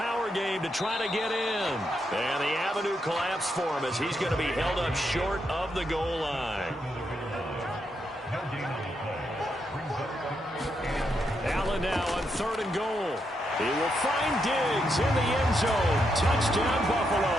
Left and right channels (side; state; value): both; normal; correlation 0.81